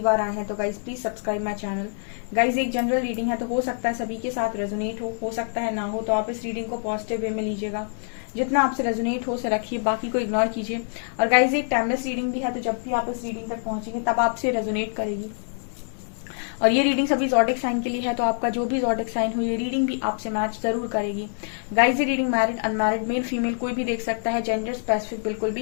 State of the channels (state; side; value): silent; right; digital silence